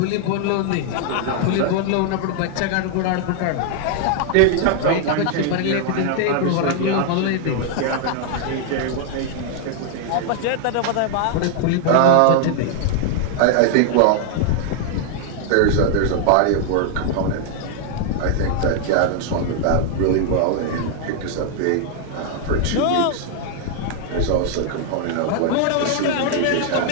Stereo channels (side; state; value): both; different; correlation 0.00